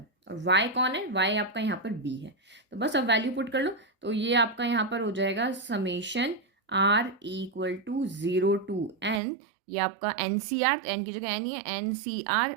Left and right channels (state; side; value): drops out; left; at 9.2 s